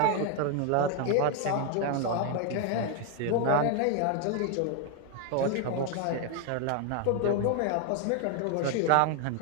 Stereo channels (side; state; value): both; different; correlation 0.01